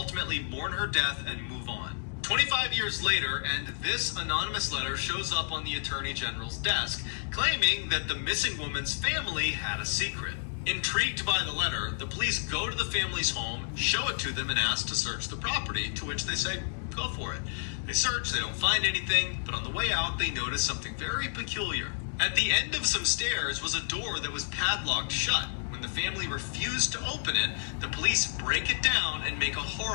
mourn her death and move on. 25 years later, and this anonymous letter shows up on the Attorney General's desk, claiming that the missing woman's family had a secret. Intrigued by the letter, the police go to the family's home, show it to them, and ask to search the property, to which they say, go for it. They search, they don't find anything, but on the way out, they notice something very peculiar. At the end of some stairs was a door that was padlocked shut. When the family refused to open it, the police break it down and make a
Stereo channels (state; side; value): silent; right; digital silence